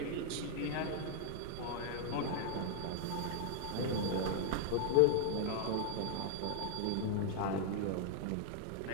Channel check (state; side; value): different; both; correlation -0.01